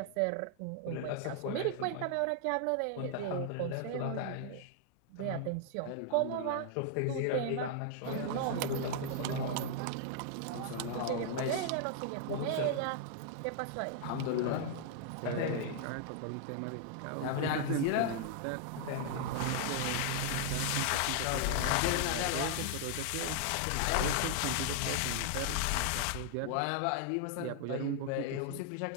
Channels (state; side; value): different; both; correlation -0.01